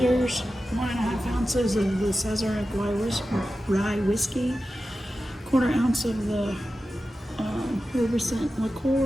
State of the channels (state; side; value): normal; both; correlation 0.93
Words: 1.5 ounces of the Sazerac rye whiskey, 1/4 ounce of the reminiscent